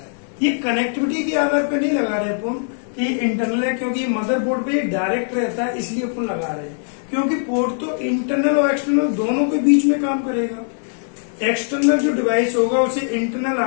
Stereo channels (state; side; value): silent; right; 62 dB below the other